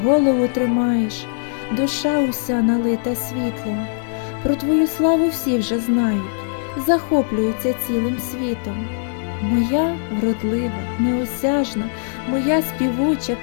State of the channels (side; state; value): right; silent; digital silence